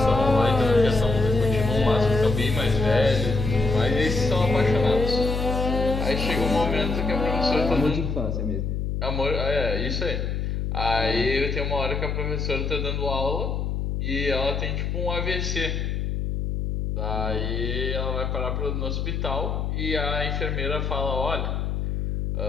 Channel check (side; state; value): left; noise; hum, 1 dB below the sound